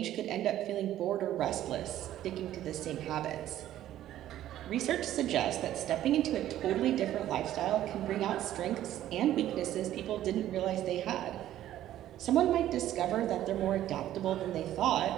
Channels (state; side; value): quieter; left; 12.8 dB